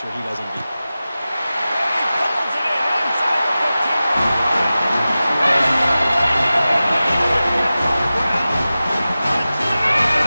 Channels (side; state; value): both; inverted; correlation -0.95